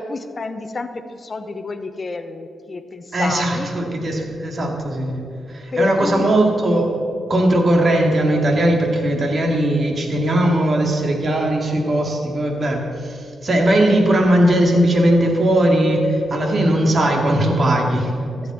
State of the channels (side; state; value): both; normal; correlation 0.85